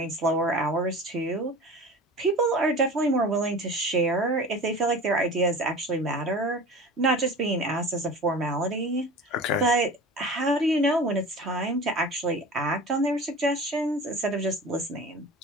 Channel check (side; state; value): both; normal; correlation 0.36